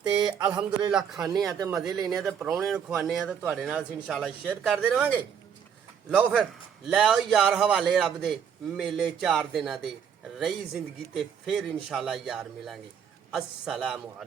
ਤੇ ਅਲਹਮਦੁਲਿਲਾ ਖਾਣੇ ਆ ਤੇ ਮਜ਼ੇ ਲੈਣੇ ਆ ਤੇ ਪ੍ਰਾਹੁਣੇ ਨੂੰ ਖਵਾਉਂਦੇ ਆ ਤੇ ਤੁਹਾਡੇ ਨਾਲ ਅਸੀਂ ਇਨਸ਼ਾਅੱਲਾ ਸ਼ੇਅਰ ਕਰਦੇ ਰਵਾਂਗੇ। ਲਓ ਫਿਰ ਲੈ ਆਓ ਯਾਰ ਹਵਾਲੇ ਰੱਬ ਦੇ, ਮੇਲੇ 4 ਦਿਨਾਂ ਦੇ, ਰਹੀ ਜ਼ਿੰਦਗੀ ਤੇ ਫਿਰ ਇਨਸ਼ਾਅੱਲਾ ਯਾਰ ਮਿਲਾਂਗੇ। अस्सलामु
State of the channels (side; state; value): left; quieter; 7.8 dB